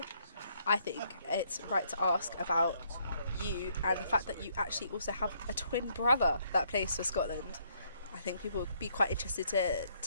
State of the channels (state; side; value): inverted; both; correlation -0.69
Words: I think it's right to ask about you and the fact that you actually also have a twin brother that plays for Scotland. I think people would be quite interested